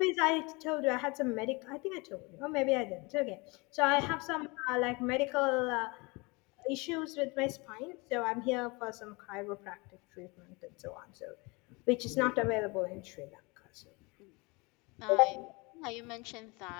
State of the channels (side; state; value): right; quieter; 26.8 dB